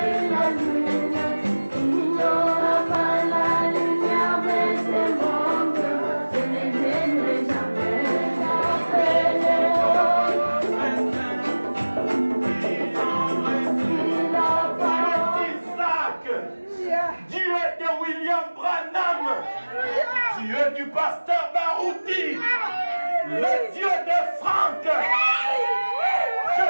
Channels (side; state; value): both; inverted; correlation -1.00